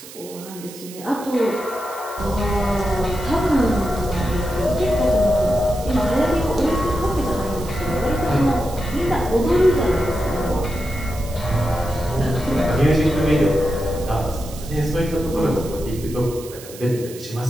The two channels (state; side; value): noise; right; hiss, 16 dB below the sound